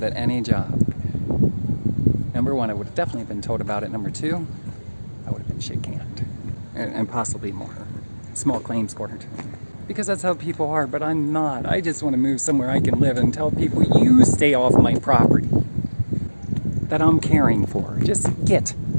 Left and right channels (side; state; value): both; inverted; correlation -1.00